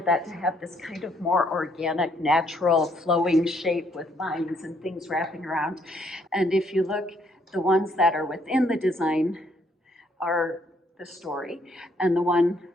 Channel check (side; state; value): both; normal; correlation 0.69